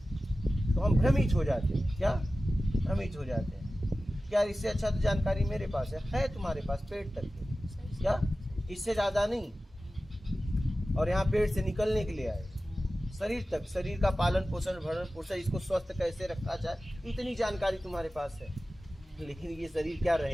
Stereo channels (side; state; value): both; normal; correlation 0.95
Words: तो हम भ्रमित हो जाते हैं। क्या भ्रमित हो जाते हैं? क्या इससे अच्छा तो जानकारी मेरे पास है तुम्हारे पास पेट तक के, क्या इससे ज्यादा नहीं। और यहाँ पेट से निकलने के लिए आए, शरीर तक, शरीर का पालन पोषण, भरण पोषण, इसको स्वस्थ कैसे रखा जाए, इतनी जानकारी तुम्हारे पास है। लेकिन ये शरीर क्या